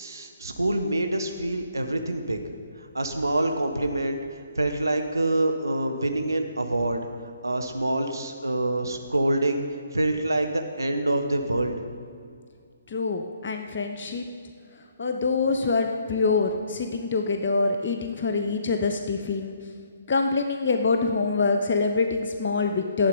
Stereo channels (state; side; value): inverted; both; correlation -0.72